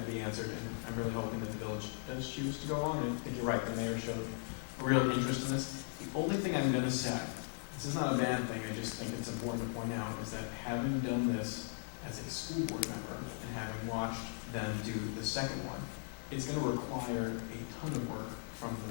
to be answered, and I'm really hoping that the village does choose to go along. And I think you're right, the mayor showed a real interest in this. The only thing I'm going to say, this is not a bad thing, I just think it's important to point out, is that having done this as a school board member and having watched them do the second one, it's going to require a ton of work from the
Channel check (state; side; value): silent; right; 52 dB below the other